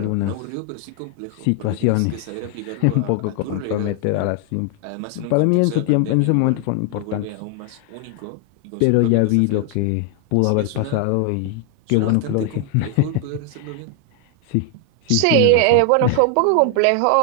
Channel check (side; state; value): both; different; correlation 0.00